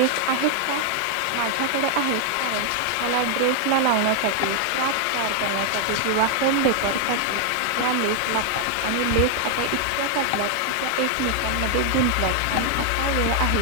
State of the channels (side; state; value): both; different; correlation 0.00